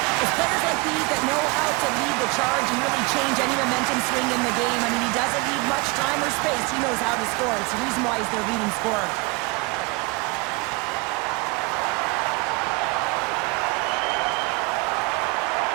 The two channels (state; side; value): quieter; left; 26.1 dB